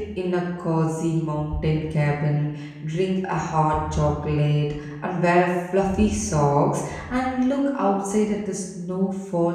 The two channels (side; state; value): both; identical; correlation 1.00